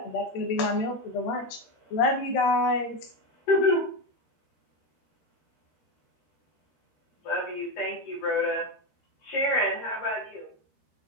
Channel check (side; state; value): right; late; 13 ms